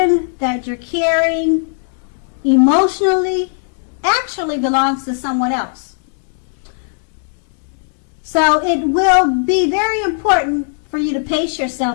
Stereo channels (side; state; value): right; silent; digital silence